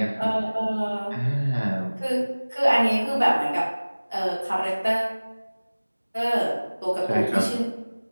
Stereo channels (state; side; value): inverted; both; correlation -1.00